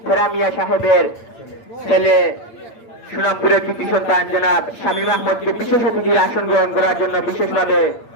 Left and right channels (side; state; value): right; late; 8.8 ms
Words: ফেরামিয়া সাহেবের ছেলে সুনামপুরের কৃতি সন্তান জনাব শামীম আহমদকে বিশেষ অতিথির আসন গ্রহণ করার জন্য বিশেষভাবে